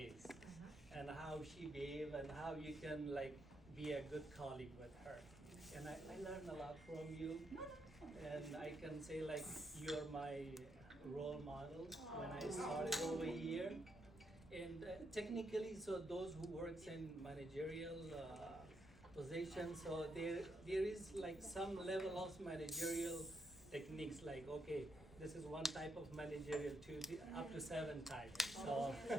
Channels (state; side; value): normal; both; correlation 0.79